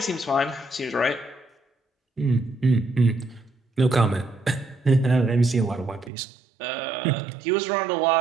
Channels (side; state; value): left; drops out; at 6.1 s